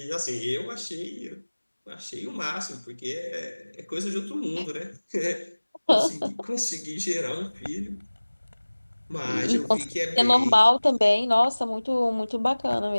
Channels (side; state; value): both; inverted; correlation -1.00